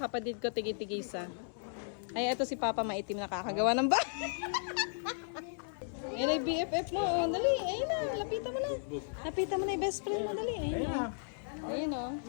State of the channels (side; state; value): right; silent; digital silence